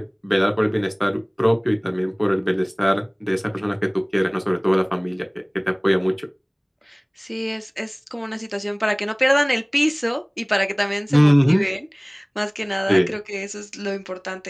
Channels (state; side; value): identical; both; correlation 1.00